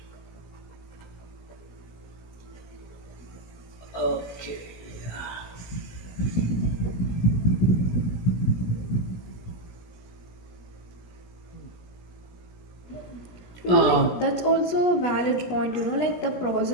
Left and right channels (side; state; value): right; late; 17 ms